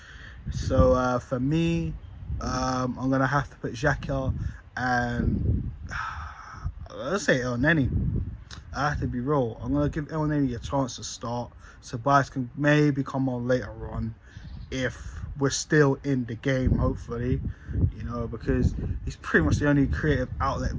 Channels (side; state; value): both; identical; correlation 1.00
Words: So for me, I'm going to have to put Xhaka and let's say El Neni. I have to be real. I'm going to give El Neni a chance to start. Tobias can maybe come on later on if we're still in the game, hopefully, you know, because he's pretty much the only creative outlet